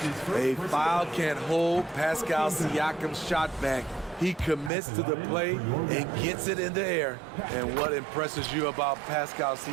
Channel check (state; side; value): drops out; left; at 4.7 s